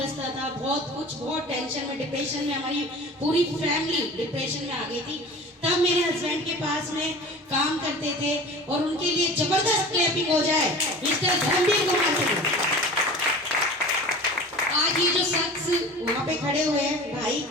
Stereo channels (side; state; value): both; normal; correlation 0.38